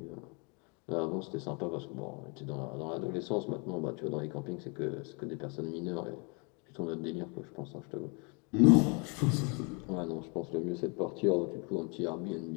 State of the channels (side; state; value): right; quieter; 33.8 dB